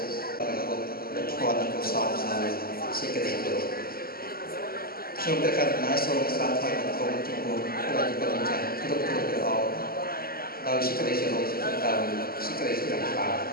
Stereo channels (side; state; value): right; late; 0.43 ms